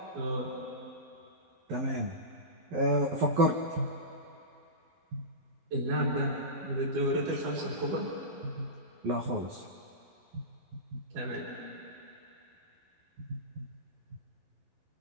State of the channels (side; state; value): left; late; 11 ms